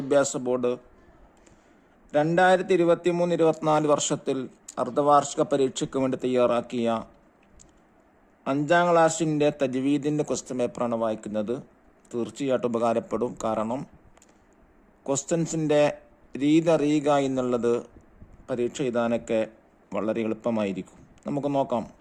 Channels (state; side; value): identical; both; correlation 1.00